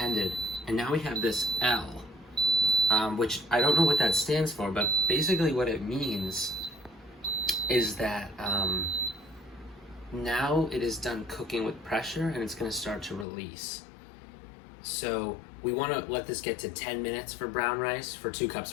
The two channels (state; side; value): drops out; right; at 13.2 s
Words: and now we have this L, which I don't know what that stands for, but basically what it means is that now it is done cooking with pressure, and it's going to start to release. So we want to let this get to 10 minutes for brown rice, for 2 cups